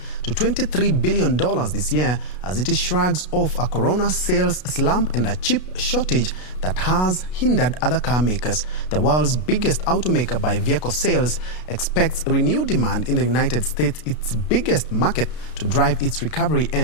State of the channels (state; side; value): late; right; 33 ms